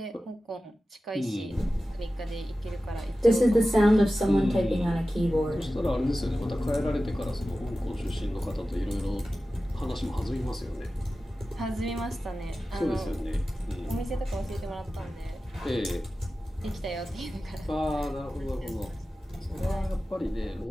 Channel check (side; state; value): both; normal; correlation 0.95